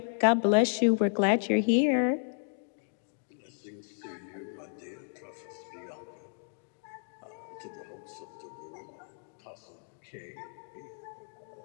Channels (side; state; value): right; silent; 56 dB below the other